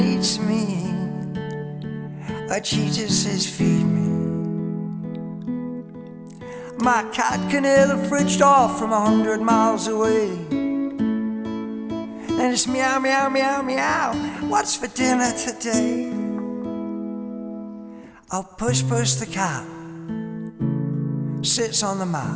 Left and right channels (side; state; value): both; identical; correlation 1.00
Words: me, but she just says feed me. My cat can hear the fridge door from 100 miles away, and it's meow, meow, meow, meow, what's for dinner today? Oh, Puss the cat sits on the